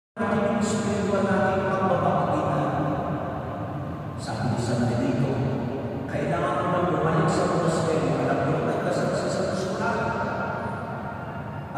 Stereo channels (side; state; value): both; identical; correlation 1.00